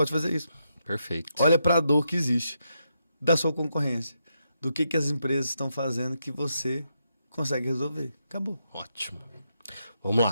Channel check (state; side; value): inverted; both; correlation -0.82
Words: fazer isso. Perfeito. Olha para a dor que existe da sua concorrência. Do que as empresas estão fazendo que você consegue resolver. Acabou. Ótimo. Vamos